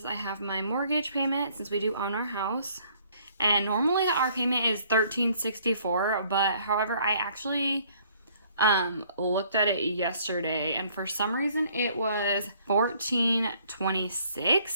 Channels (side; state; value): both; inverted; correlation -0.61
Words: I have my mortgage payment since we do own our house. And normally our payment is $1,364, but however, I actually looked at it yesterday, and for some reason it was